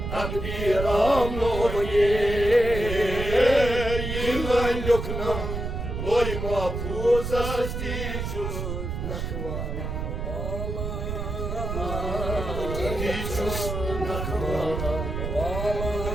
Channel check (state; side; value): noise; right; rumble, 4 dB below the sound